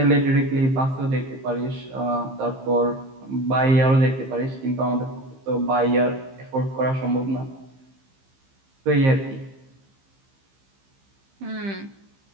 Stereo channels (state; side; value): late; left; 15 ms